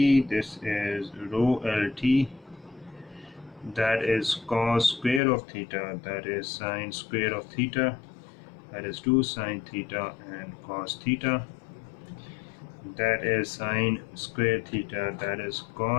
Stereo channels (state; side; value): drops out; right; at 5.2 s